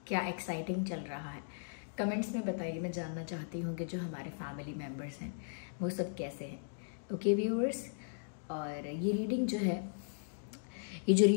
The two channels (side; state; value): right; silent; digital silence